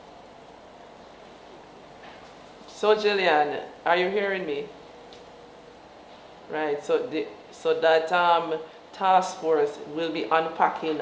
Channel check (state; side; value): identical; both; correlation 1.00